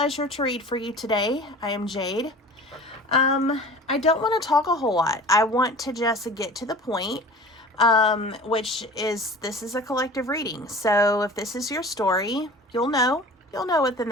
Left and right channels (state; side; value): normal; both; correlation 0.40